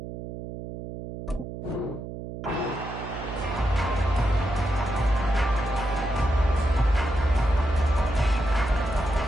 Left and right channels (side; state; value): right; noise; hum, 9 dB below the sound